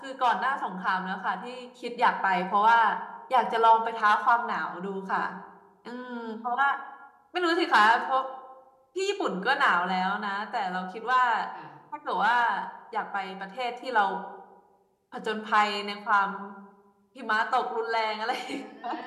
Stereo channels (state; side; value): identical; both; correlation 1.00